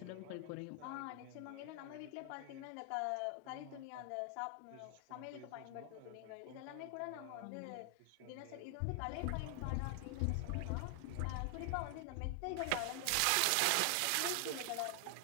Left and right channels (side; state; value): both; different; correlation 0.00